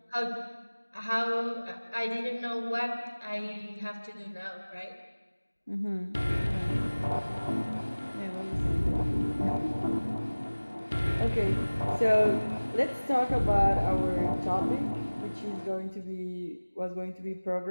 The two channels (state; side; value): inverted; both; correlation -1.00